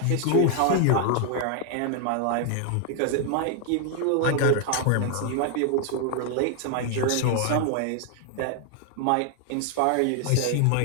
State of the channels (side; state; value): both; different; correlation 0.00